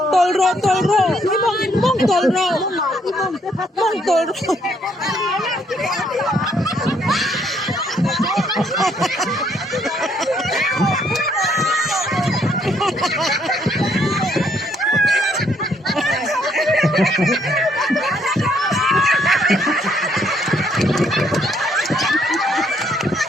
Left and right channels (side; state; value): both; normal; correlation 0.69